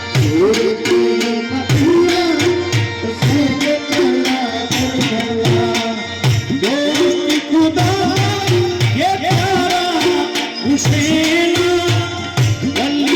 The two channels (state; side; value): identical; both; correlation 1.00